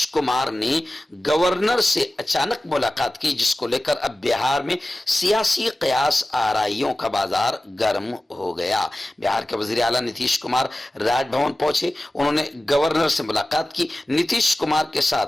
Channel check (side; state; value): both; normal; correlation 0.96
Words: कुमार ने गवर्नर से अचानक मुलाकात की, जिसको लेकर अब बिहार में सियासी कयास आराइयों का बाजार गर्म हो गया। बिहार के वजीर आला नीतीश कुमार राजभवन पहुंचे, उन्होंने गवर्नर से मुलाकात की। नीतीश कुमार के